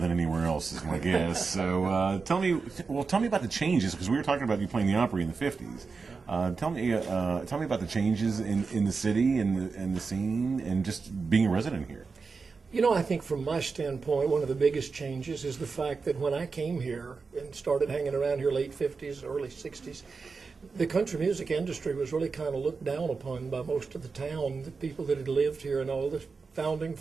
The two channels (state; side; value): quieter; left; 4.7 dB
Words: anywhere else, is my guess. So tell me about the changes, because we were talking about you playing the Opry in the '50s. Tell me about the changes in the city and the scene, and just being a resident here. You know, I think from my standpoint, one of the biggest changes is the fact that when I came here and started hanging around here late 50s, early 60s, the country music industry was really kind of looked down upon by most of the town, the people that had lived here and all the founding